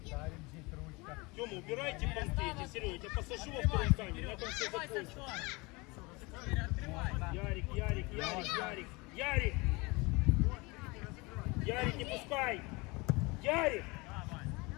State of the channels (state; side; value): quieter; right; 25.5 dB